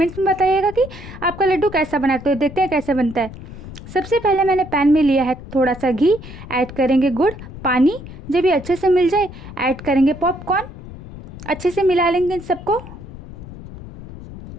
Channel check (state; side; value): noise; left; rumble, 14 dB below the sound